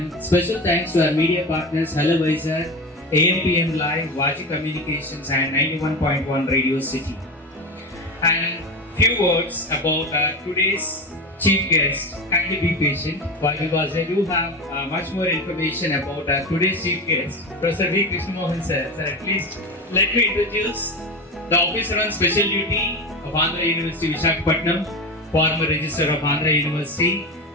special thanks to our media partners Hello Vizag, AMPM Live, Vaji Communications and 91.1 Radio City. And few words about today's chief guest. Kindly be patient, because I do have much more information about today's chief guest, Professor V. Krishnamohan sir. Sir, at least let me introduce the officer on special duty of Andhra University Visakhapatnam, former registrar of Andhra University,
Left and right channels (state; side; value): normal; both; correlation 0.24